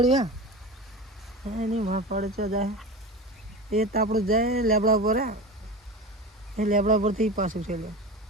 એની પડે ચો જાય એ તાપડું જાય લેબડા પર એ લેબડા પરથી પાછું છે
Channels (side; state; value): both; normal; correlation 0.28